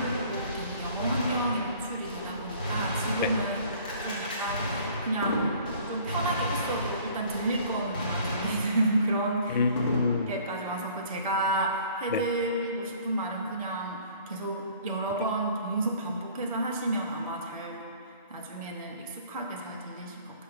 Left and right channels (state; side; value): inverted; both; correlation -0.52